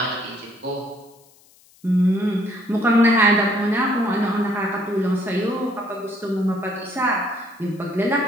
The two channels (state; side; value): noise; left; hiss, 29 dB below the sound